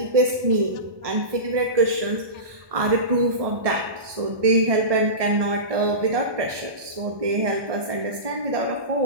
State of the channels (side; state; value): left; late; 1.2 ms